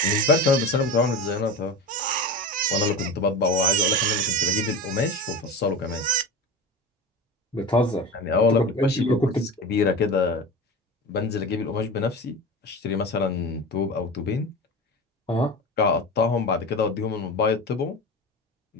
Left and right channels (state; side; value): normal; both; correlation 0.28